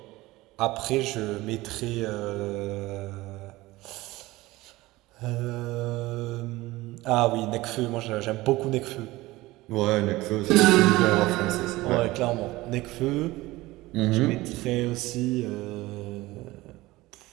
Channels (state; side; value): quieter; left; 19.2 dB